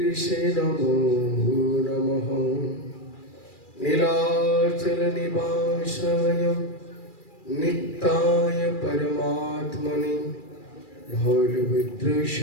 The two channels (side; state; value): right; late; 2.3 ms